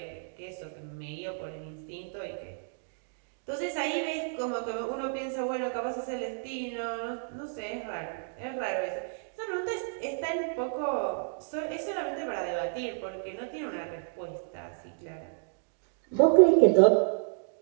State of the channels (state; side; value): silent; left; digital silence